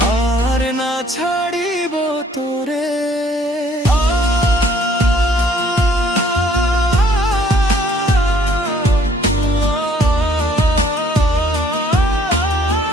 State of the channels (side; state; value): both; normal; correlation 0.60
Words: আর না ছাড়িব তোরে।